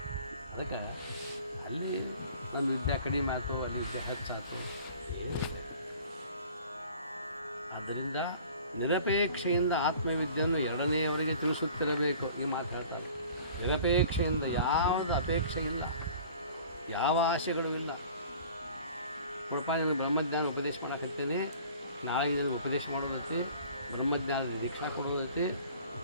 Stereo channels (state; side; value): inverted; both; correlation -0.47